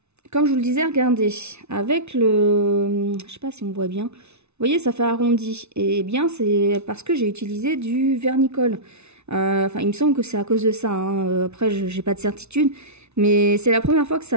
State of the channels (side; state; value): left; late; 0.81 ms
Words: comme je vous le disais, regardez, avec le, je sais pas si on voit bien, vous voyez ça fait arrondi, et bien c'est parce que j'ai utilisé du vernicole. Enfin il me semble que c'est à cause de ça, hein. Après j'ai pas de certitude, mais c'est la première fois que